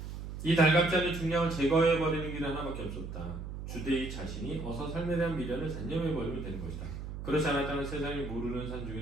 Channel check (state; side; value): noise; right; hum, 8 dB below the sound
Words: 이 달갑지 않은 중량을 제거해버리는 길은 하나밖에 없었다. 주대의 자신이 어서 삶에 대한 미련을 단념해버리면 되는 것이다. 그렇지 않았다면 세상이 모르는 산